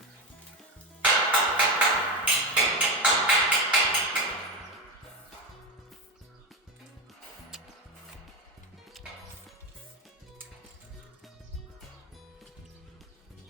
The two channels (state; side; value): normal; both; correlation 0.16